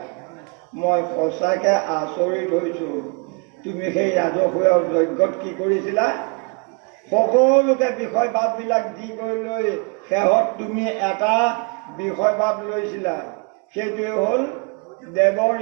মই সঁচাকে আচৰিত হৈছো। তুমি সেই ৰাজসূয় যজ্ঞত কি কৰিছিলা? সকলোকে বিষয় ভাৱবিলাক দি গৈ লৈ শেহত তুমি এটা বিষয়বাদ লৈছিলা, সেইটোৱে হ'ল দেৱ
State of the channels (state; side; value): quieter; left; 33.1 dB